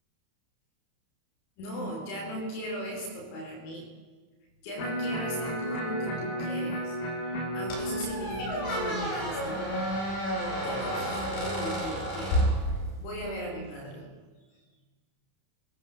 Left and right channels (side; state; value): right; late; 31 ms